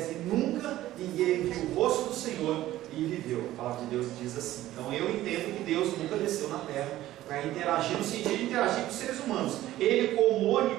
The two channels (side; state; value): left; quieter; 14.7 dB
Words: e nunca ninguém viu o rosto do Senhor, e e viveu. A palavra de Deus diz assim. Então eu entendo que Deus nunca desceu na terra para interagir, no sentido de interagir com os seres humanos. Ele, como